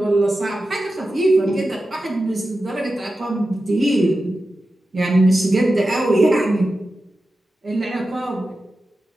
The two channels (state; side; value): normal; both; correlation 0.92